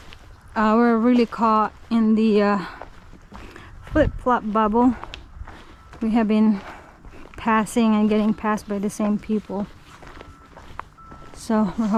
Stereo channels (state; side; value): identical; both; correlation 1.00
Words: We're really caught in the flip-flop bubble. We have been passing and getting passed by the same people. So we're